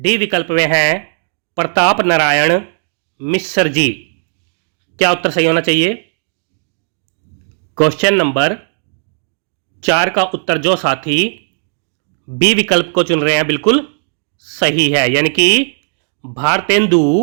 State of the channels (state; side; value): silent; left; digital silence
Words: विकल्प में है प्रताप नारायण मिश्र जी। क्या उत्तर सही होना चाहिए? क्वेश्चन नंबर 4 का उत्तर जो साथी बी विकल्प को चुन रहे हैं बिल्कुल सही है, यानी कि भारतेंदु